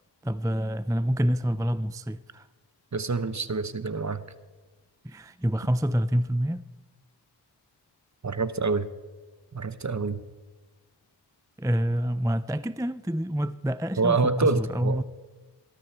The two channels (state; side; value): normal; both; correlation 0.55